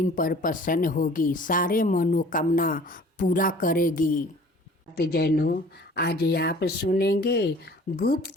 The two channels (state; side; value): normal; both; correlation 0.49